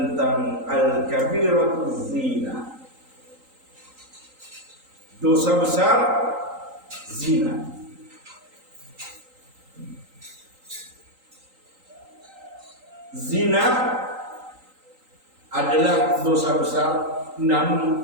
al-kabiratuz zina. Dosa besar zina. Zina adalah dosa besar,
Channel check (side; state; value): left; late; 3.8 ms